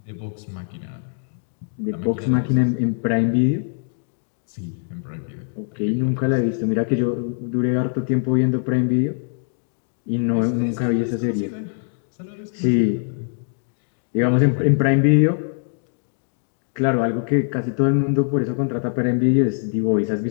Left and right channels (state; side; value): silent; right; 64 dB below the other